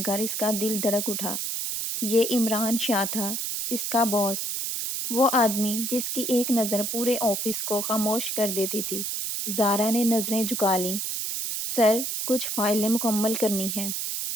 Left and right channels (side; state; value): right; noise; hiss, 2 dB below the sound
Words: کر اس کا دل دھڑک اٹھا۔ یہ عمران شاہ تھا، اس کا باس، وہ آدمی جس کی ایک نظر پورے آفس کو خاموش کر دیتی تھی۔ زارا نے نظریں جھکا لیں۔ سر، کچھ فائلیں مکمل کرنی ہیں۔